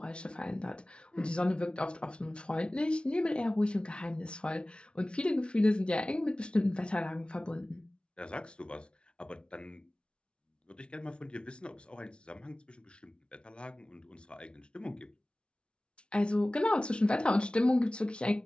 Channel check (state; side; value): late; right; 0.057 ms